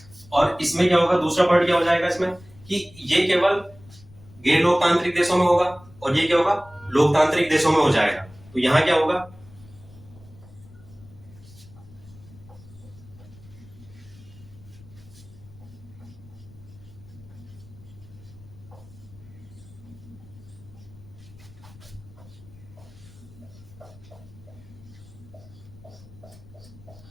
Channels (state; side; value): noise; left; rumble, 21 dB below the sound